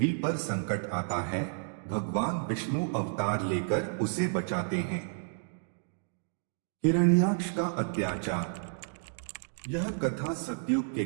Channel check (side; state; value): left; silent; digital silence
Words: पर संकट आता है, भगवान विष्णु अवतार लेकर उसे बचाते हैं। हिरण्याक्ष का अत्याचार। यह कथा सतयुग के